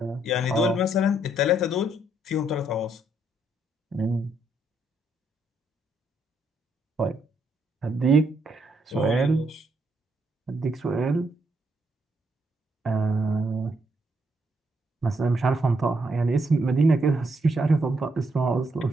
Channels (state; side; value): normal; both; correlation 0.75